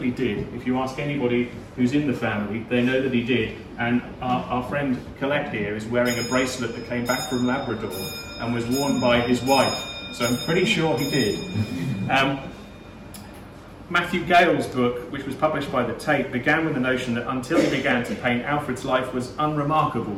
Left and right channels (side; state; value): both; identical; correlation 1.00